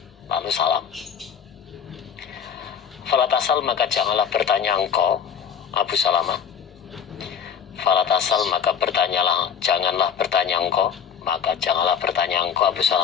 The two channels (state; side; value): quieter; right; 7.6 dB